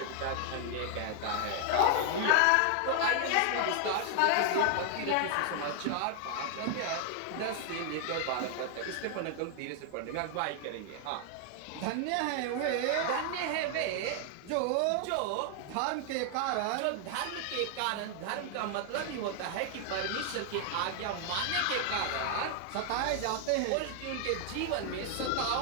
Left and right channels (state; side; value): different; both; correlation 0.00